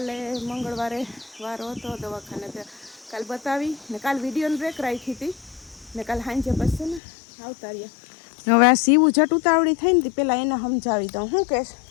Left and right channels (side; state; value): right; drops out; at 7.0 s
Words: મંગળવારે વારો હતો દવાખાને તે કાલે બતાવી ને કાલે વિડીયોની બ્રેક રાખી હતી ને કાલે સાંજે પછી ને આવતા રહ્યા. હવે આ સીવું જટ ઉતાવળી થઈ ને પેલા એને સમજાવી દઉં. શું કહેશ?